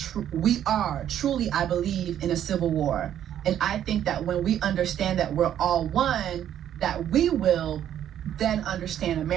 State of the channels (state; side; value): quieter; left; 10.5 dB